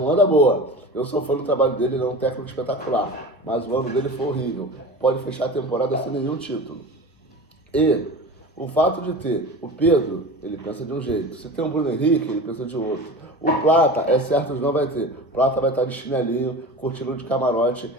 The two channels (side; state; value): both; normal; correlation 0.33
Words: anda boa. Eu sou fã do trabalho dele, ele é um técnico espetacular, mas o ano dele foi horrível. Pode fechar a temporada sem nenhum título. E o fato de ter o Pedro, ele pensa de um jeito. Se tem o Bruno Henrique, ele pensa de outro. O Plata, é certo que não vai ter. O Plata vai estar de chinelinho, curtindo de camarote